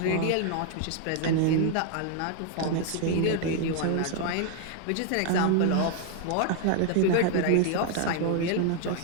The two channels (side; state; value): both; different; correlation 0.00